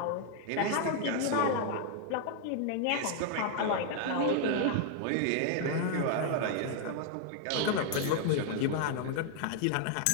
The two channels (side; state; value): both; different; correlation 0.00